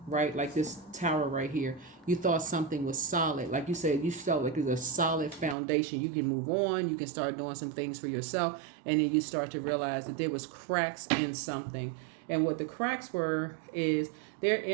right? Like this tower right here. You thought something was solid. Like you said, you felt like it's a solid foundation. You can move on. You can start doing some things for yourself. And then you start to realize that there was cracks in something. And what the cracks were is they're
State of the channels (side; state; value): left; drops out; at 5.6 s